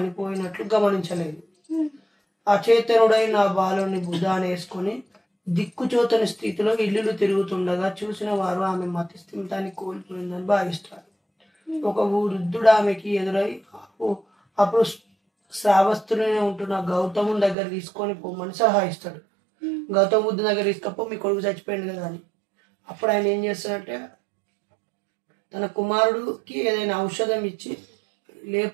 గమనించలేదు. అచేతనుడైన ఆ బాలుని బుధాన్ని వేసుకొని దిక్కుచోతని స్థితిలో ఇల్లులు తిరుగుతుండగా చూసిన వారు ఆమె మతిస్థిమితాన్ని కోల్పోయిందని భావిస్తారు. ఒక వృద్ధుడు ఆమెకి ఎదురై అప్పుడు శ్రావస్తులనే ఉంటున్న గౌతముని దగ్గర తీసుకొని పోమని సలహా ఇస్తాడు. గౌతమ బుద్ధుని దగ్గర తీసుకపో, మీ కొడుకు చచ్చిపోయింది కదా అని. అప్పుడు ఆయన ఏం చేస్తాడంటే తన కుమారుడికి ఏదైనా ఔషధం ఇచ్చి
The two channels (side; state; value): left; drops out; at 17.6 s